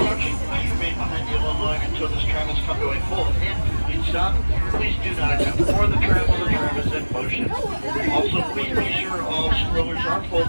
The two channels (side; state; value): both; inverted; correlation -1.00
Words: please remain behind the yellow line until this tram has come to a full and complete stop. Please do not attempt to board the tram while the tram is in motion. Also, please be sure all strollers are